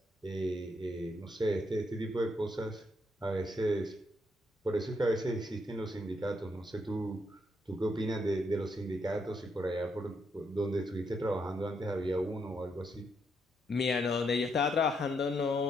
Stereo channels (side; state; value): both; normal; correlation 0.77